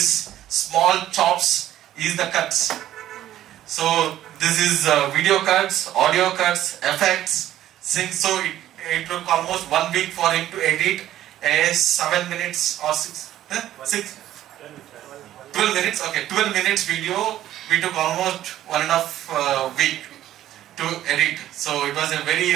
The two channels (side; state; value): left; quieter; 12.9 dB